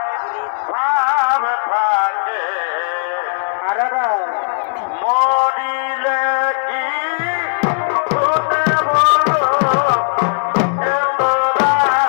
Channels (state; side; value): silent; right; digital silence